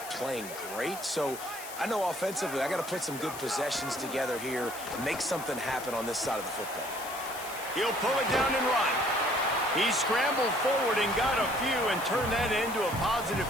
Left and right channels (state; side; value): noise; left; hiss, 12 dB below the sound